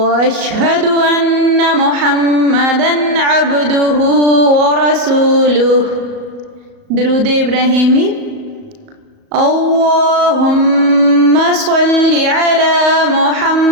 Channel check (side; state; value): left; late; 37 ms